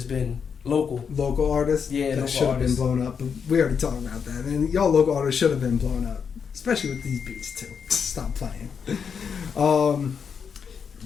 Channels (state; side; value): quieter; right; 6.6 dB